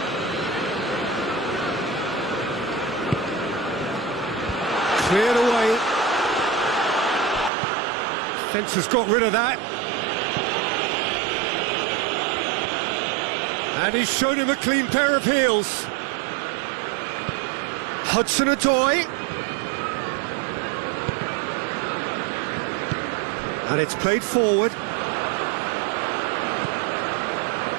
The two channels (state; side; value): drops out; left; at 7.5 s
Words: Cleared away. Fence has got rid of that. And he's shown him a clean pair of heels. Hudson-Odoi. And it's played forward.